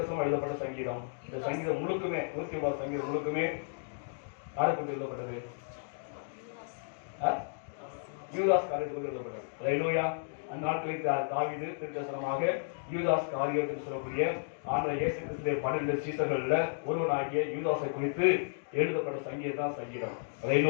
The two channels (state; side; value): silent; right; digital silence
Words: எழுதப்பட்ட சங்கீதம். இந்த சங்கீதம் முழுக்குமே 109 சங்கீதம் முழுக்குமே யாரை குறித்து எழுதப்பட்டது? யூதாஸ் காரியத்தில் எழுதப்பட்டது. அல்லேலூயா. அந்த நாட்களில் தாவீது திருக்கசனமாக யூதாஸ் காரியத்தில் சொல்லக்கூடிய ஆண்டவர் இயேசு கிறிஸ்துவின் 12 சீசர்கள்ல ஒருவனாகிய யூதாஸை குறித்து எழுதப்பட்ட சங்கீதம் தான் சங்கீதம்.